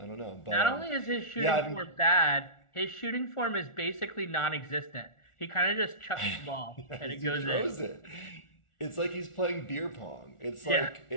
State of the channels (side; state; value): right; late; 1.4 ms